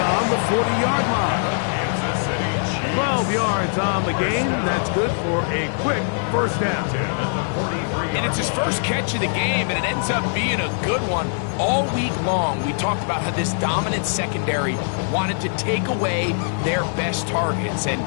the 40-yard line. 12 yards on the game. That's good for a quick first down. And it's his first catch of the game, and it ends up being a good one. All week long, we talked about how this dominant secondary wanted to take away their best targets, and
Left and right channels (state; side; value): silent; right; digital silence